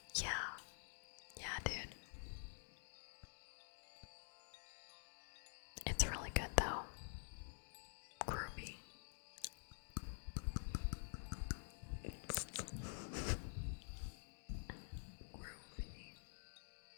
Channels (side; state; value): right; silent; digital silence